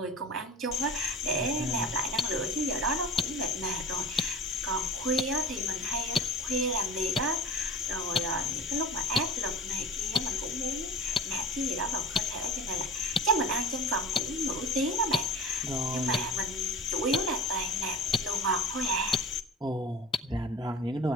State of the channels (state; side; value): normal; both; correlation 0.36